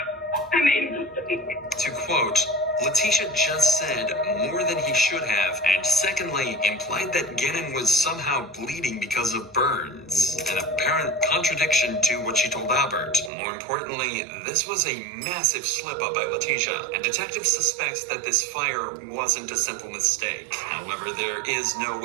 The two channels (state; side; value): drops out; left; at 13.3 s